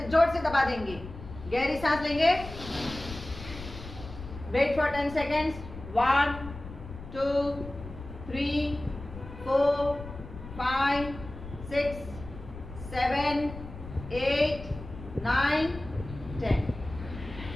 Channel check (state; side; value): noise; left; rumble, 13 dB below the sound